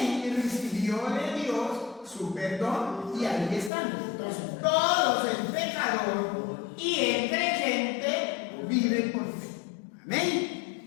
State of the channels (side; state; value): right; drops out; at 3.7 s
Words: recibió de Dios su perdón. Y ahí están. Entonces todos, el pecador y el creyente, viven por fe.